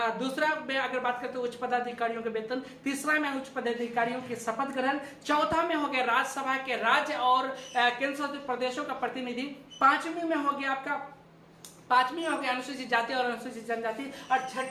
दूसरा में अगर बात करें तो उच्च पदाधिकारियों के वेतन। तीसरा में उच्च पदाधिकारियों के शपथ ग्रहण। चौथा में हो गया राज्यसभा के राज्य और केंद्र शासित प्रदेशों का प्रतिनिधि। पांचवी में हो गया अनुसूचित जाति और अनुसूचित जनजाति। और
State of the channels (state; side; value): identical; both; correlation 1.00